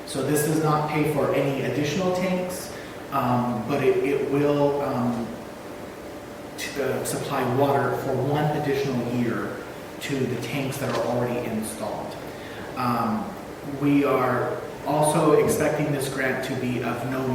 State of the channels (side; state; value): both; identical; correlation 1.00